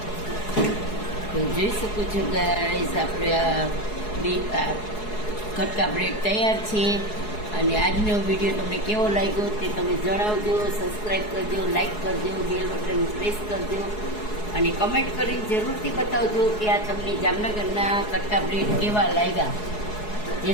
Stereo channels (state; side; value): late; right; 4.7 ms